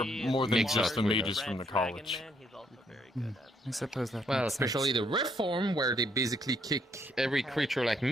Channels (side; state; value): both; normal; correlation 0.70